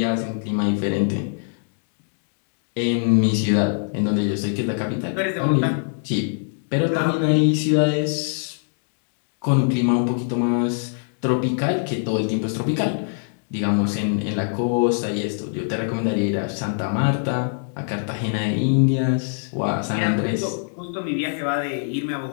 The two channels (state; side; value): silent; right; digital silence